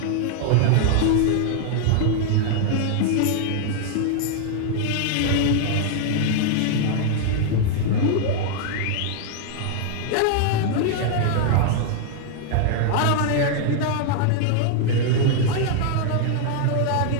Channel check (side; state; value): both; different; correlation 0.00